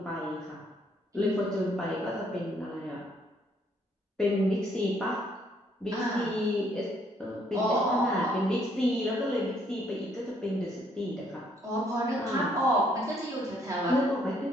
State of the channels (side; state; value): both; normal; correlation 0.67